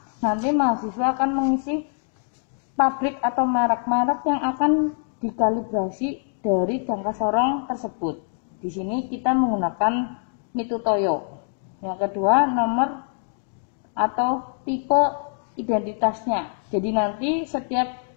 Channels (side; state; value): right; silent; 62 dB below the other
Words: nanti mahasiswa akan mengisi pabrik atau merek-merek yang akan dikalibrasi dari jangka sorong tersebut. Di sini kita menggunakan Mitutoyo. Yang kedua, nomor atau tipe identitasnya. Jadi nanti setiap